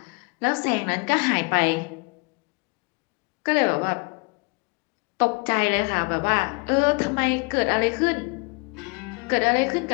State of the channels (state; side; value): quieter; right; 30.5 dB